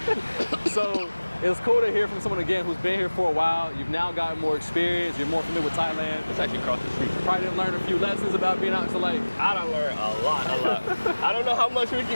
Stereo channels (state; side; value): inverted; both; correlation -1.00